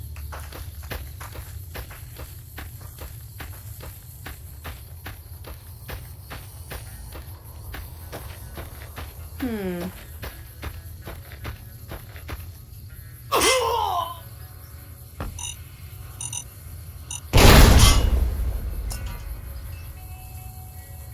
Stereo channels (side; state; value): both; identical; correlation 1.00